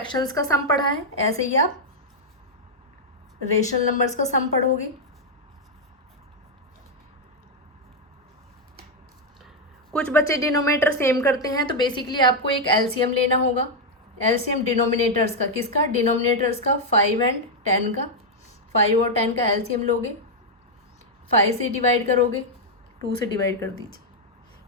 का सम पढ़ा है ऐसे ही आप रेशनल नंबर्स का सम पढ़ोगे। कुछ बच्चे डिनोमिनेटर सेम करते हैं, तो बेसिकली आपको एक एलसीएम लेना होगा। एलसीएम डिनोमिनेटर्स का, किसका? डिनोमिनेटर्स का, 5 एंड 10 का। 5 और 10 का एलसीएम लोगे, 5 से डिवाइड करोगे, 2 से डिवाइड कर दीजिए,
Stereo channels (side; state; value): both; normal; correlation 0.00